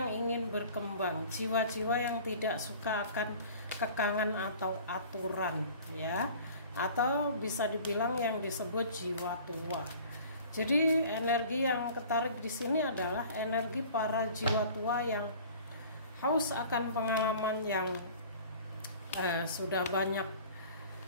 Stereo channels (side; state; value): both; inverted; correlation -0.46